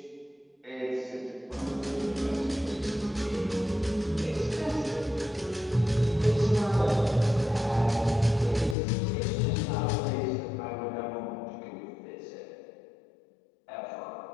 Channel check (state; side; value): drops out; right; at 8.8 s